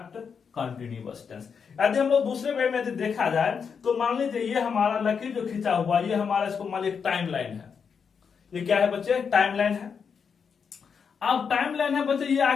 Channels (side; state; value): right; quieter; 6.3 dB